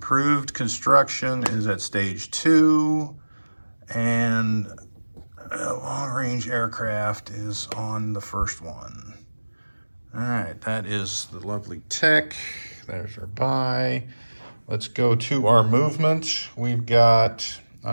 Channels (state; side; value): inverted; both; correlation -1.00